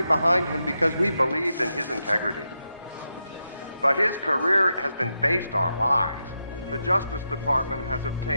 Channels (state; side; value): inverted; both; correlation -0.86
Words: behind him because we believed in his integrity. But his career has been based on lies. The Justice Department has